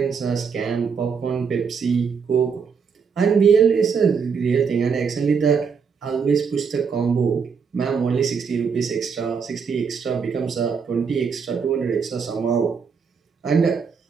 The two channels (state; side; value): quieter; left; 6.0 dB